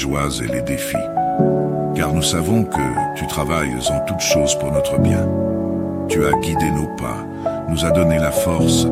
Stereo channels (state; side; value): identical; both; correlation 1.00